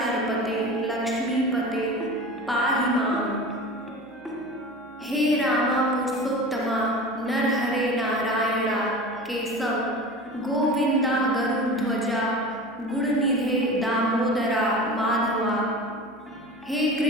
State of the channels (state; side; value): noise; right; hum, 30 dB below the sound